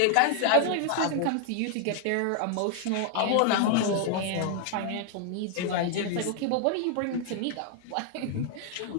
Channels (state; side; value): different; both; correlation 0.00